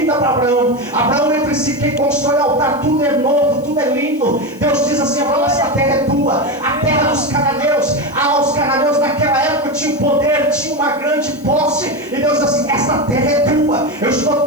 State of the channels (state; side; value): noise; left; hiss, 26 dB below the sound